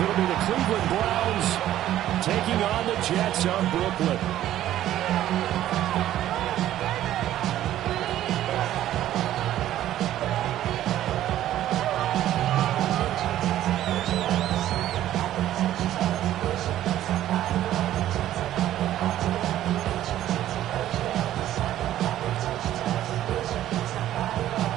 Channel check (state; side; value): quieter; left; 12.8 dB